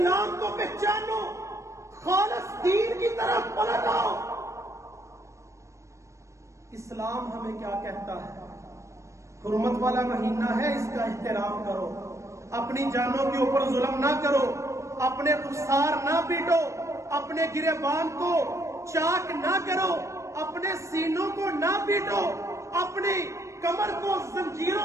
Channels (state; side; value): late; left; 0.15 ms